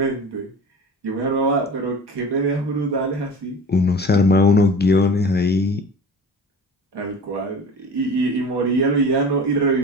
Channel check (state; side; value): normal; both; correlation 0.37